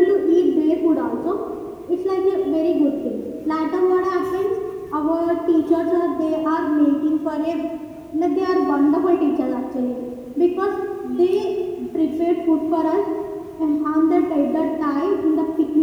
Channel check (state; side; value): identical; both; correlation 1.00